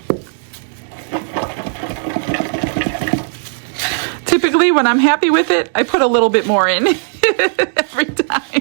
Typically, when I'm happy with it, I put a little bit more in every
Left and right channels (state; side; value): silent; left; digital silence